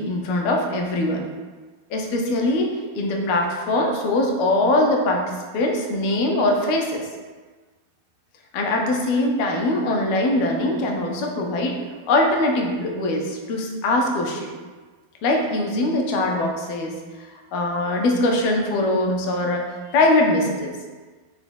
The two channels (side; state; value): right; late; 12 ms